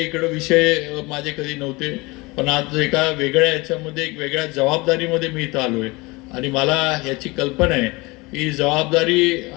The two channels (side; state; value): right; quieter; 24.2 dB